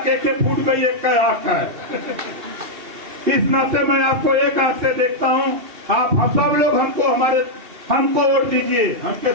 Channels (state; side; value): late; left; 2.7 ms